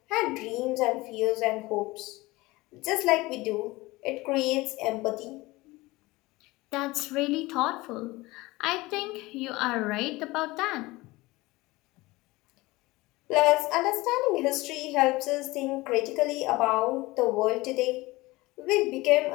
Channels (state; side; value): quieter; right; 20.9 dB